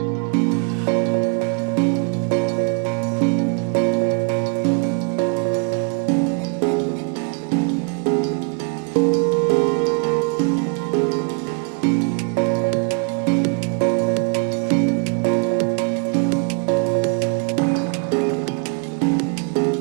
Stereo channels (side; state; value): left; quieter; 38.6 dB